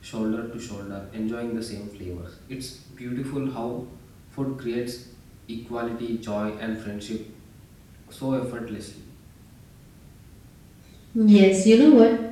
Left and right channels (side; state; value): both; identical; correlation 1.00